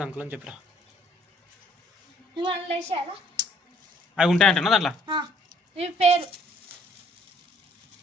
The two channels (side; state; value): both; normal; correlation 0.62